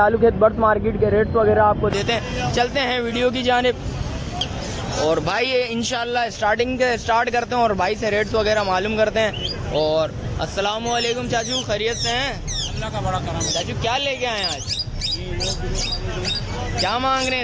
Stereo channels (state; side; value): identical; both; correlation 1.00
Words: खेत बर्ड्स मार्केट के रेट्स वगैरह आपको देते हैं। चलते हैं वीडियो की जानिब और भाई इंशाल्लाह स्टार्ट करते हैं और भाई से रेट्स वगैरह मालूम करते हैं। और अस्सलाम वालेकुम चाचू, खैरियत से हैं? अल्लाह का बड़ा करम है। चाचू क्या लेके आए हैं आज? क्या मांग रहे हैं